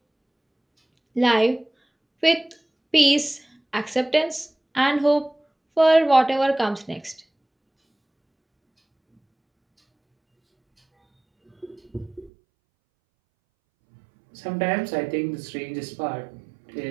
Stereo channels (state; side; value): drops out; left; at 12.3 s